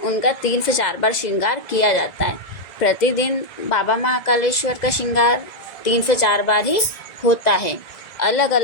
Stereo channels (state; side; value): late; right; 2.0 ms